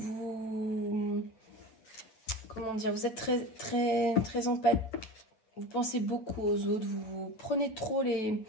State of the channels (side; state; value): right; late; 9.2 ms